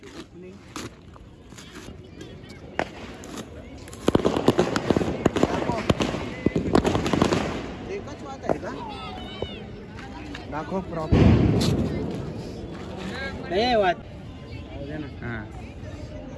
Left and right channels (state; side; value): identical; both; correlation 1.00